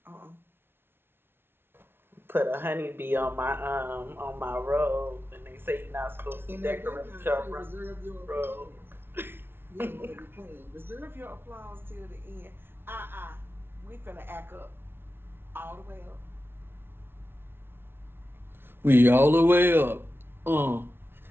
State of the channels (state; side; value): late; left; 0.11 ms